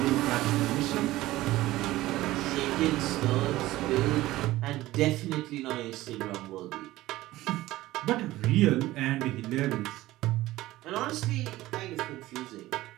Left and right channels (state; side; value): quieter; left; 16.9 dB